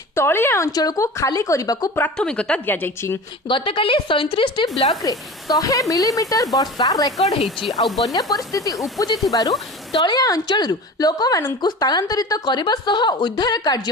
तलिया अंचल को खाली करने को प्राथमिकता दिया जायछि। गतकाली 37टी ब्लॉक रे 100 मिलीमीटर वर्षा रेकर्ड हेछि। आउ बन्या परिस्थिति उपजि थिबारु तलिया अंचल लोक माननकु स्थानांतरित करबा सह उद्धार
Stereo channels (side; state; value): both; normal; correlation 0.34